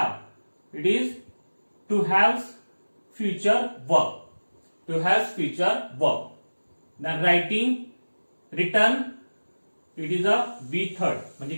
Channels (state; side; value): inverted; both; correlation -1.00